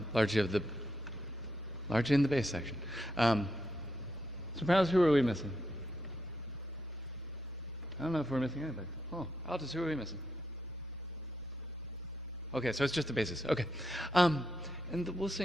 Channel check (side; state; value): both; normal; correlation 0.81